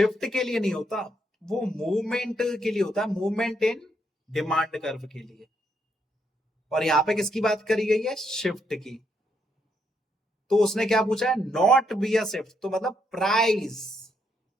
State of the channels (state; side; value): normal; both; correlation 0.76